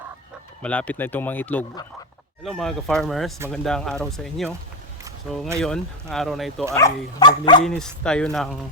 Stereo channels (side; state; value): both; normal; correlation 0.10